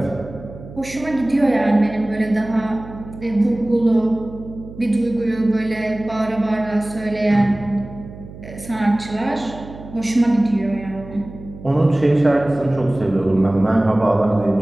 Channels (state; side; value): noise; right; hum, 15 dB below the sound